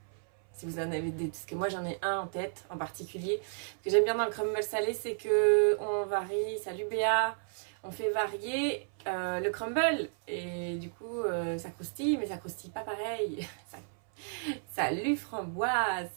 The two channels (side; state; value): left; silent; 56 dB below the other